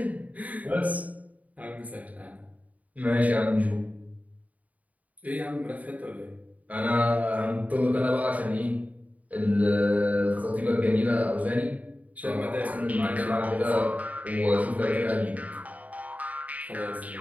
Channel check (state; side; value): late; left; 0.072 ms